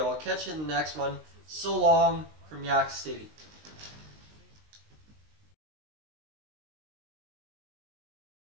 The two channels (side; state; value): left; late; 19 ms